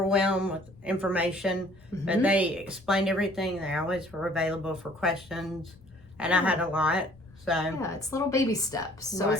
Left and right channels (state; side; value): noise; left; rumble, 26 dB below the sound